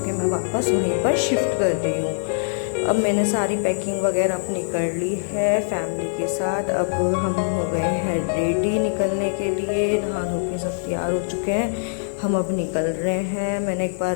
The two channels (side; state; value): right; silent; digital silence